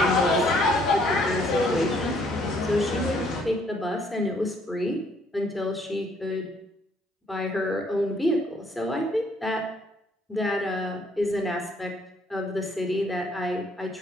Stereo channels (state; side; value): normal; both; correlation 0.65